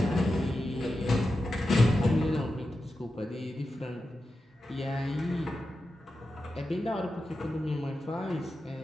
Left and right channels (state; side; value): normal; both; correlation 0.90